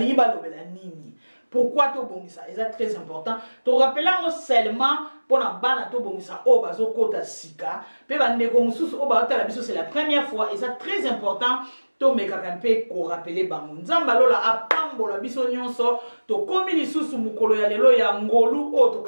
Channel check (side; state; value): both; inverted; correlation -1.00